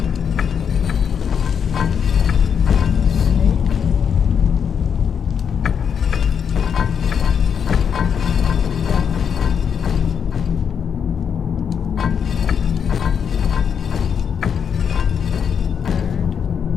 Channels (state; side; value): quieter; right; 7.3 dB